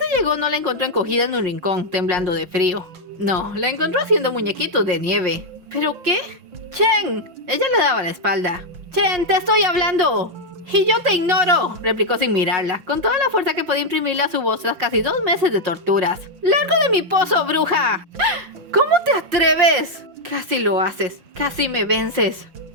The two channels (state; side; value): late; left; 5.5 ms